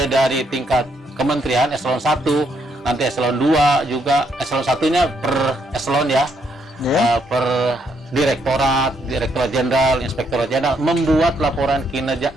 dari tingkat kementerian eselon 1, nanti eselon 2 juga, eselon 1-nya per eselon ya, per direktorat jenderal, inspektorat jenderal membuat laporan kinerja,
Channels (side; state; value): both; normal; correlation 0.74